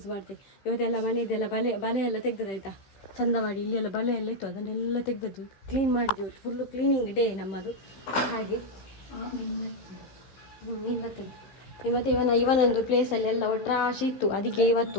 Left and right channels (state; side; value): late; right; 15 ms